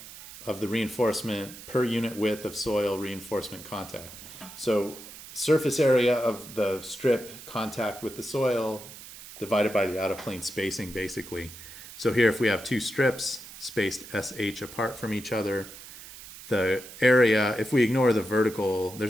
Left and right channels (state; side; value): noise; right; hiss, 15 dB below the sound